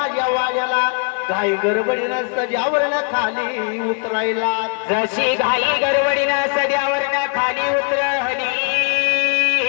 वाल्याला घाई गडबडीनं सजावरनं खाली उतरायला. जशी घाई गडबडीनं सध्यावरनं खाली उतरली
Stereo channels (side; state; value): right; quieter; 36.5 dB